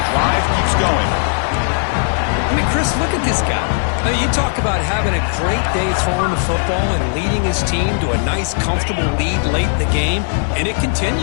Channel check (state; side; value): silent; right; 68 dB below the other